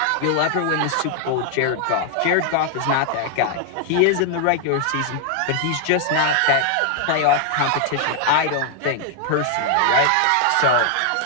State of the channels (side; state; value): both; different; correlation 0.00